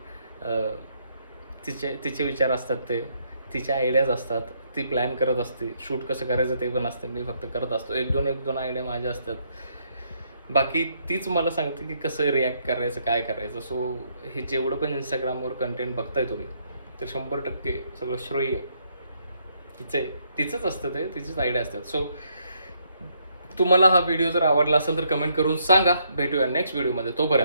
तिचे विचार असतात, ते तिच्या आयडियाज असतात, ती प्लॅन करत असते. शूट कसं करायचं ते पण असतं, मी फक्त करत असतो. एक दोन आयडिया माझ्या असतात. बाकी तीच मला सांगते की कसं रिॲक्ट करायचं काय करायचं. सो हे जेवढं पण इंस्टाग्रामवर कंटेंट बघताय तुम्ही तर 100% सगळं श्रेय तिचंच असतं, ते तिचीच आयडिया असतात. सो तुम्हाला हा व्हिडिओ जर आवडला असेल तर कमेंट करून सांगा. भेटूया नेक्स्ट व्हिडिओमध्ये.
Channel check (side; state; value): both; inverted; correlation -0.73